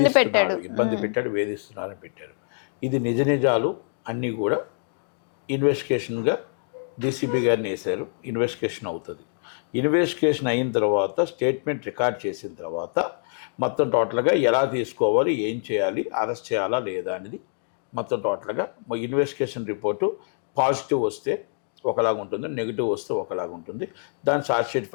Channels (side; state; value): right; silent; digital silence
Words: ఇబ్బంది పెట్టాడు, వేధిస్తున్నారని పెట్టారు. ఇది నిజాలు అన్నీ కూడా ఇన్వెస్టిగేషన్గా డీసీపీ గారిని వేశారు. ఇన్వెస్టిగేషన్ అవుతుంది. ఇన్వెస్టిగేషన్ అయిన తర్వాత స్టేట్మెంట్ రికార్డ్ చేసిన తర్వాత మొత్తం టోటల్గా ఎలా తీసుకోవాలి, ఏం చేయాలి, అరెస్ట్ చేయాలా లేదా అనేది మొత్తం టోటల్గా ఇన్వెస్టిగేషన్ రిపోర్టు పాజిటివ్ వస్తే ఒకలాగా ఉంటుంది, నెగిటివ్ వస్తే ఒకలాగా ఉంటుంది. దాన్ని ఛార్జ్ షీట్